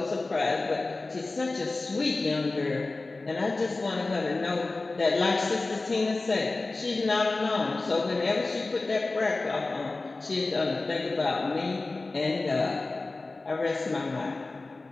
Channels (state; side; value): quieter; right; 3.4 dB